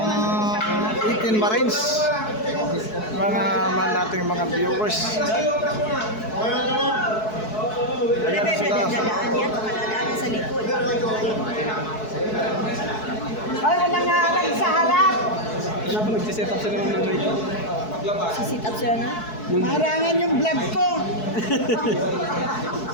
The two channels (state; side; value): late; right; 4.6 ms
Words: 18 Marines, mga nating mga viewers. Ayan sila. Sa likod. Ay, walang ngalan sa harap. Wala pa nagsiset up sila ng mic. Sisit up sila na? Harangan yung vlog ko.